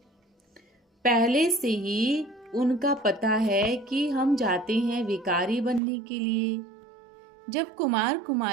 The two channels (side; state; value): left; drops out; at 5.8 s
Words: पहले से ही उनका पता है कि हम जाते हैं विकारी बनने के लिए। जब कुमार